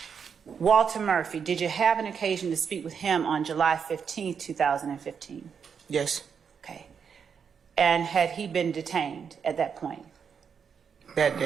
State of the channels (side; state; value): left; quieter; 6.7 dB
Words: Walter Murphy, did you have an occasion to speak with him on July 15, 2015? Yes. Okay. And had he been detained at that point? That